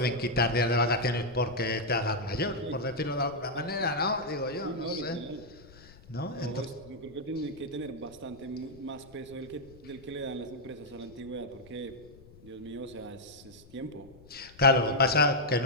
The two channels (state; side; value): noise; left; rumble, 23 dB below the sound